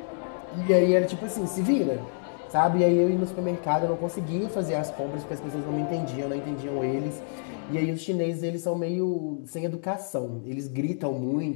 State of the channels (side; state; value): right; silent; digital silence